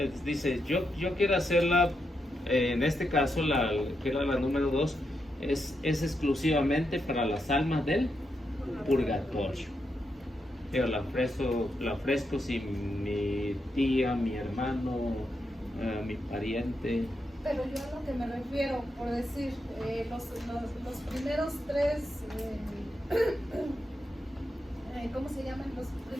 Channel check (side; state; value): both; normal; correlation 0.84